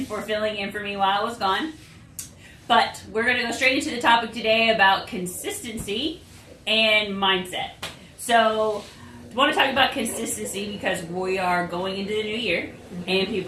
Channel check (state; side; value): identical; both; correlation 1.00